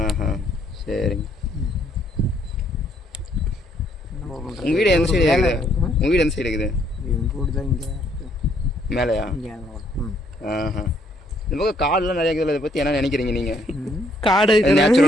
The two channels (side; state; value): both; normal; correlation 0.69